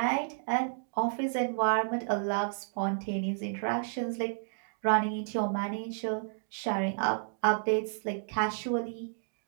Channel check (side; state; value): left; silent; digital silence